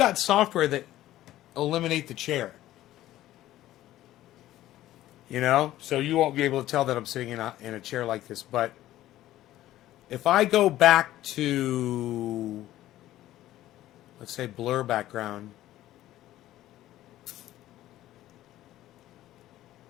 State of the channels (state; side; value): quieter; right; 14.4 dB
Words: software that eliminate the chair. You know? So you won't be able to tell that I'm sitting in a chair like this. But if I go back to, let's say, blur background.